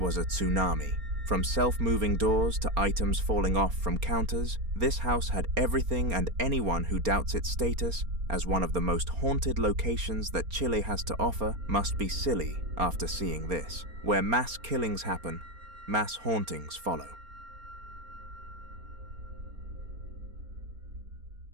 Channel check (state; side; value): late; left; 4.3 ms